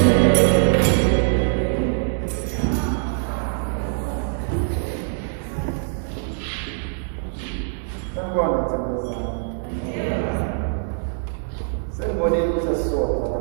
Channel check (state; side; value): silent; left; digital silence